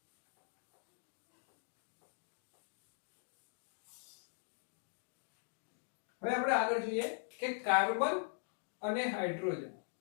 હવે આપણે આગળ જોઈએ કે કાર્બન અને હાઇડ્રોજન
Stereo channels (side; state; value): right; silent; digital silence